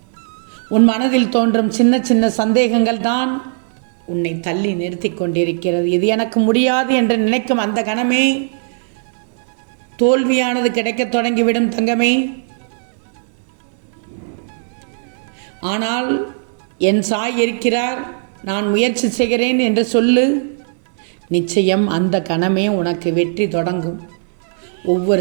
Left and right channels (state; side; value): silent; left; digital silence